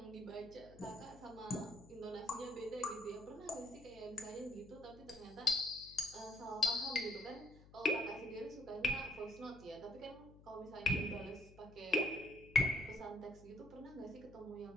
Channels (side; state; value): left; noise; hum, 21 dB below the sound